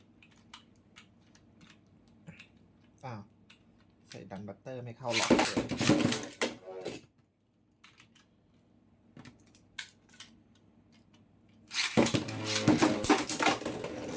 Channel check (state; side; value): identical; both; correlation 1.00